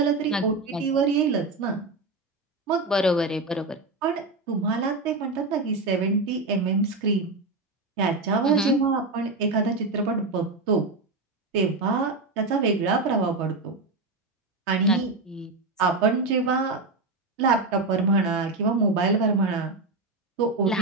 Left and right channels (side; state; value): left; quieter; 3.4 dB